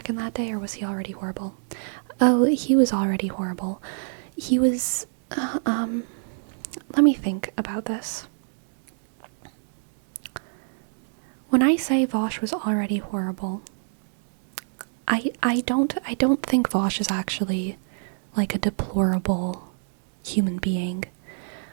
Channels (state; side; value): silent; left; 61 dB below the other